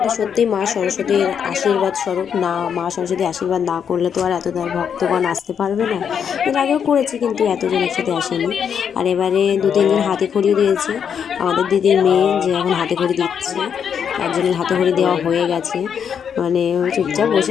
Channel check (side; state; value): right; quieter; 7.7 dB